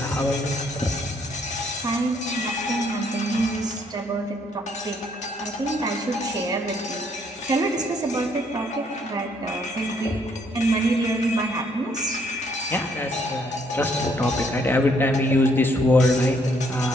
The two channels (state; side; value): normal; both; correlation 0.68